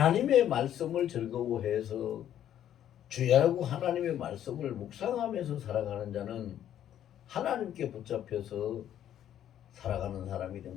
말씀을 즐거워해서 주야라고 하나님의 말씀을 묵상하면서 살아가는 자는 하나님께 붙잡혀서 살아가는 사람이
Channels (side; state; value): right; quieter; 10.8 dB